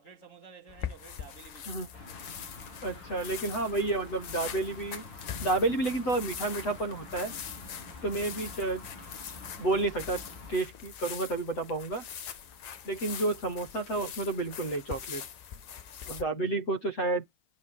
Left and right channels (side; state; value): right; late; 7.9 ms